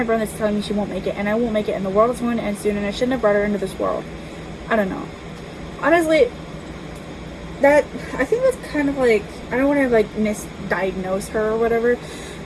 brain that's telling me she won't make it, and I won't make it, and the world is going to end soon, and I shouldn't have brought her into this world. I don't know. Honestly, I think that's kind of like, I don't want to like misdiagnose her or whatever,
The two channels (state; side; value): identical; both; correlation 1.00